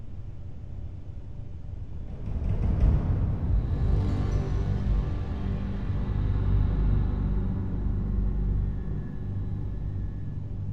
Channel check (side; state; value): both; identical; correlation 1.00